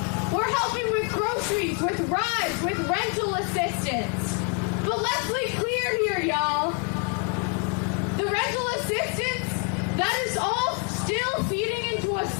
We're helping with groceries, with rides, with rental assistance. But let's be clear here, y'all. The rental assistance, that is all still feeding into a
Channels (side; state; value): right; quieter; 37.9 dB